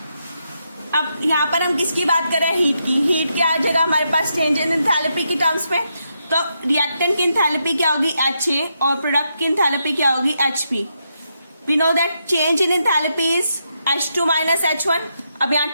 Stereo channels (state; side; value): inverted; both; correlation -0.81